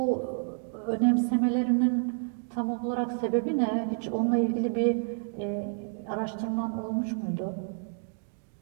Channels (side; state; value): left; silent; 58 dB below the other